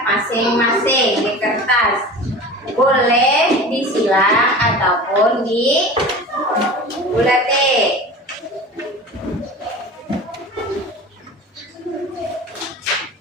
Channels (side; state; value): both; normal; correlation 0.35